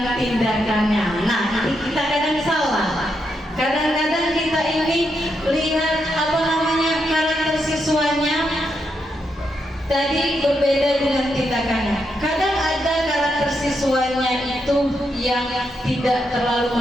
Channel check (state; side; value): normal; both; correlation 0.82